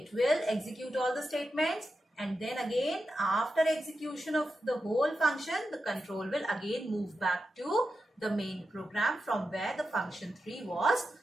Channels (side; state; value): both; normal; correlation 0.89